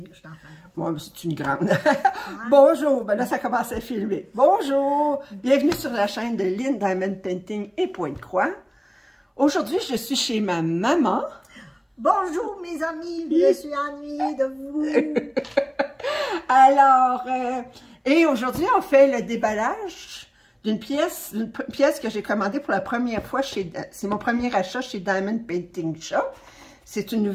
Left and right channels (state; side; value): identical; both; correlation 1.00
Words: t'en fais. Bon, c'est une grande. Bonjour, ben là, ça commence à filmer. Bonjour, bienvenue sur la chaîne de Lynn Diamond Painting et Pointe-Croix. Aujourd'hui, je suis chez ma maman. Bonjour, mes amis, je suis ennuyée de vous. Alors, et aujourd'hui, on fait le déballage d'une pièce que j'ai commandée pour la première fois chez, c'est mon premier achat chez Diamond Painting Shop. C'est une